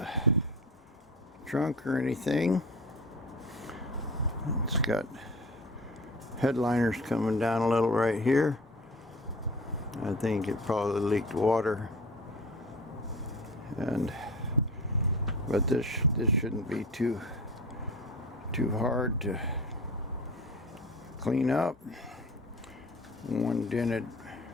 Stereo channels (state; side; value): normal; both; correlation 0.37